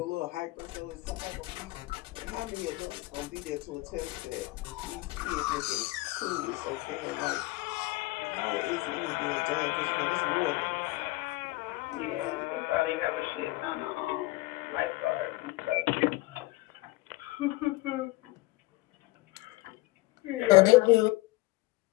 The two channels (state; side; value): quieter; right; 20.6 dB